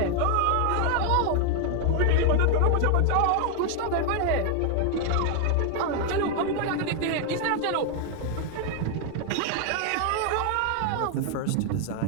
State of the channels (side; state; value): both; different; correlation 0.00